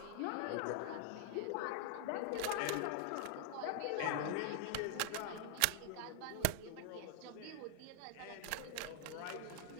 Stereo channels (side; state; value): both; different; correlation -0.01